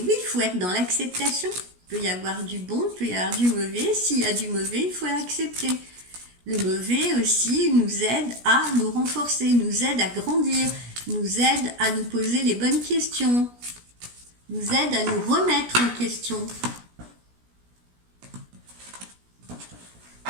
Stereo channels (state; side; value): late; left; 17 ms